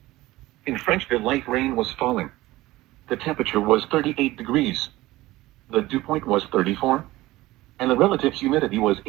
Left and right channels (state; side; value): quieter; left; 18.0 dB